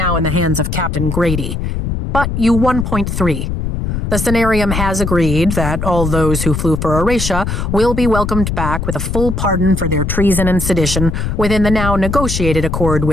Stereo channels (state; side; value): noise; left; rumble, 2 dB below the sound